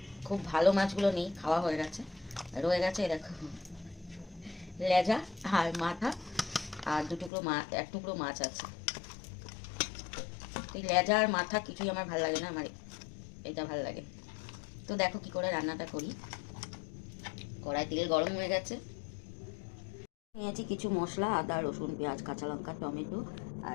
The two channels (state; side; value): drops out; right; at 7.3 s